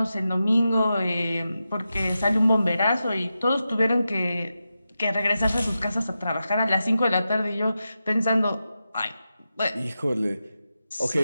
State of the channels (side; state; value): both; inverted; correlation -0.90